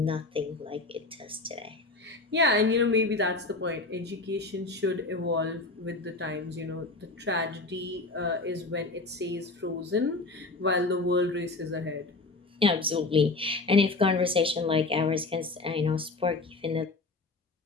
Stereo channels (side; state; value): right; quieter; 3.4 dB